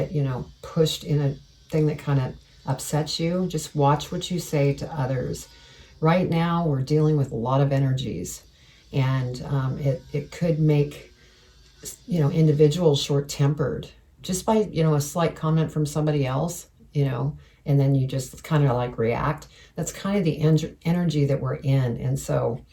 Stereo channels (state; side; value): identical; both; correlation 1.00